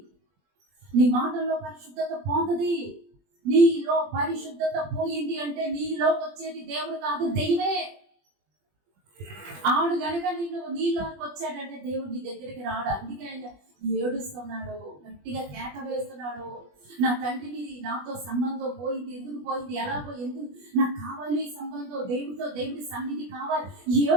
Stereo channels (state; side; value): late; left; 20 ms